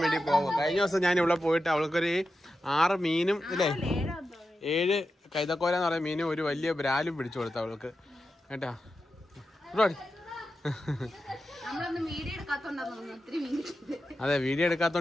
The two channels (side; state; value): both; normal; correlation 0.90